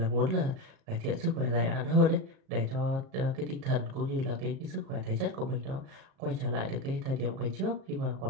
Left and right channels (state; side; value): late; left; 37 ms